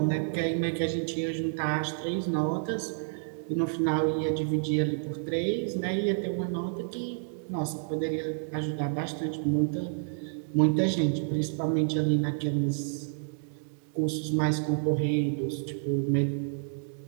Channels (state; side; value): silent; left; 58 dB below the other